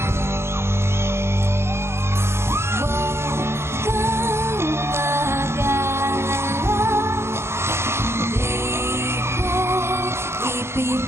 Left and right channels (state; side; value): late; left; 0.12 ms